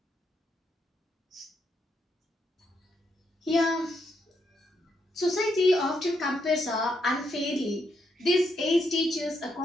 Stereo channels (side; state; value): both; normal; correlation 0.79